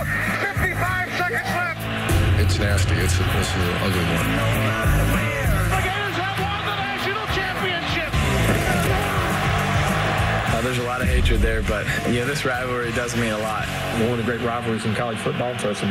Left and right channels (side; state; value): both; identical; correlation 1.00